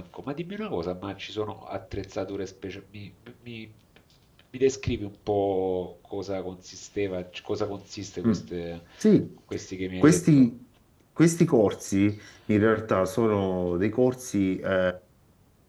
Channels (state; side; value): identical; both; correlation 1.00